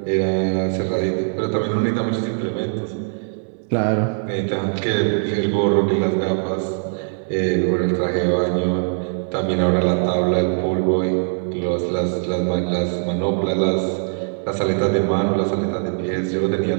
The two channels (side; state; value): left; silent; digital silence